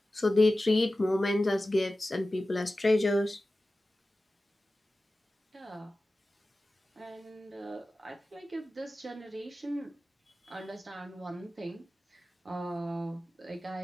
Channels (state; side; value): normal; both; correlation 0.95